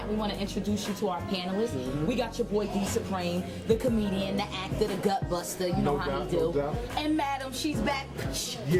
we want to introduce you to our panelists. We got your boy D Supreme, the comedian, the actor, the gut buster. You know how he do. And Madam, she's back.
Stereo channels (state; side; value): identical; both; correlation 1.00